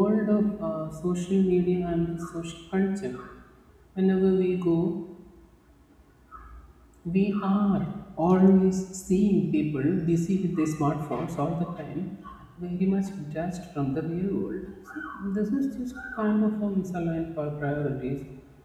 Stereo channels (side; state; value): both; identical; correlation 1.00